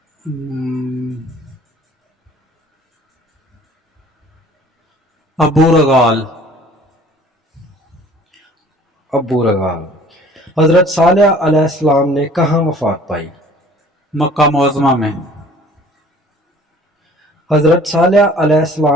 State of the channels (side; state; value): both; normal; correlation 0.51